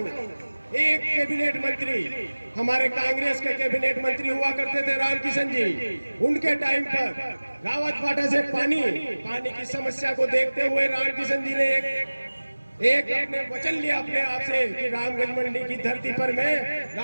एक कैबिनेट मंत्री हमारे कांग्रेस के कैबिनेट मंत्री हुआ करते थे रामकिशन जी, उनके टाइम पर रावत भाटा से पानी की समस्या को देखते हुए रामकिशन जी ने एक अपने वचन लिया अपने आप से कि रामगंज मंडी की धरती पर मैं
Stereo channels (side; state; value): both; inverted; correlation -1.00